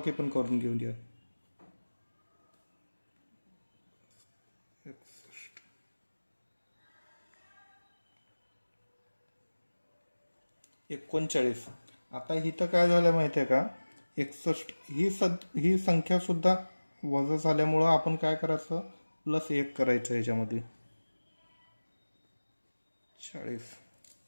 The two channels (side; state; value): both; inverted; correlation -1.00